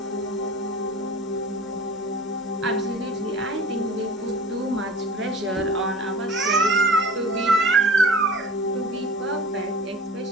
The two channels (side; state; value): both; normal; correlation 0.41